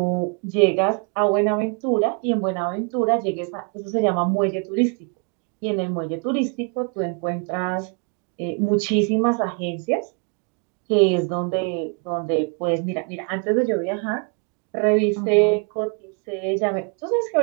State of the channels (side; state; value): left; quieter; 36.6 dB